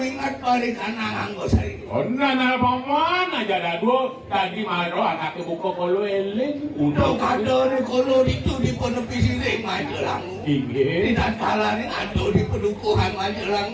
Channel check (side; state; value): both; identical; correlation 1.00